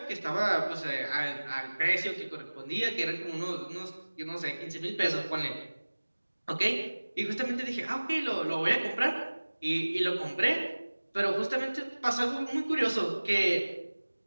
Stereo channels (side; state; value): both; inverted; correlation -1.00